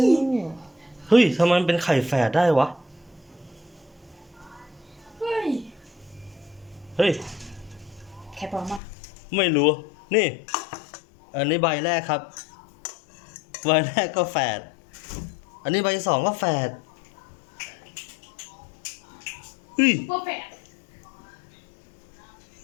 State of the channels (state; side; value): drops out; right; at 8.8 s